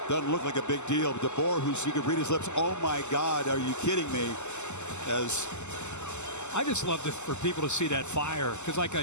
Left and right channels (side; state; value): right; late; 0.83 ms